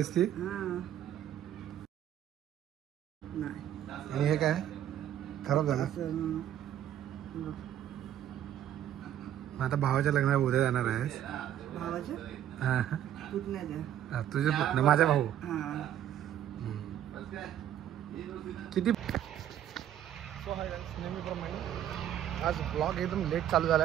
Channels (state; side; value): quieter; left; 11.0 dB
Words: ती. आणि हे काय खराब झालं. आता भावाच्या लग्नाला उद्या जाणार आहेस. तुझे पुतणे माझा भाऊ किती. नेहमीप्रमाणे आज ब्लॉग एकदम लेट चालू झाला